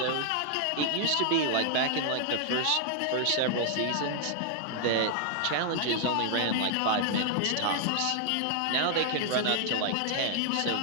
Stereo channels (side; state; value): both; different; correlation 0.00